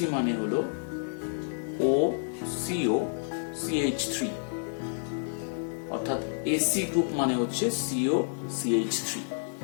মানে হলো OCOCH3, অর্থাৎ AC গ্রুপ মানে হচ্ছে COCH3।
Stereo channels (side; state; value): right; silent; digital silence